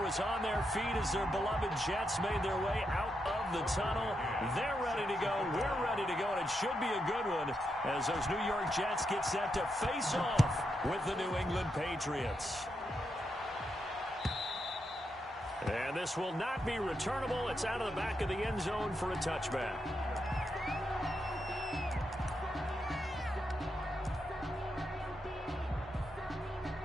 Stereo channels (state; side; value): normal; both; correlation 0.83